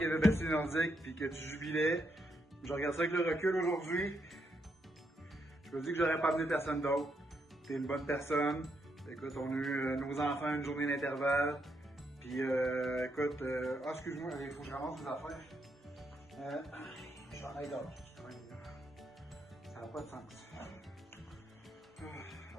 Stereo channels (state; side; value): normal; both; correlation 0.79